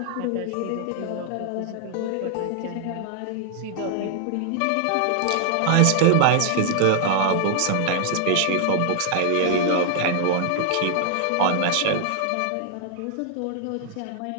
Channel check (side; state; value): both; different; correlation 0.00